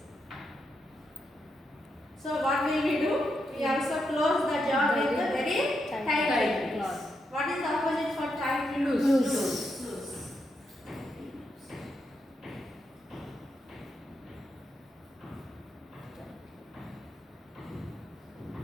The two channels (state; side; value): normal; both; correlation 0.83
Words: so what will we do? We also close the jar with a very Tight. tight Tight. What is the opposite for tight? Loose. Loose. Loose.